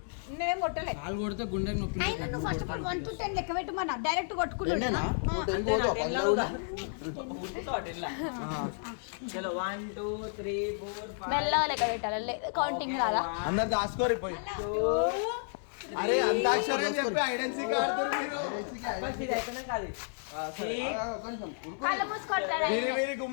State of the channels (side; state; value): right; silent; digital silence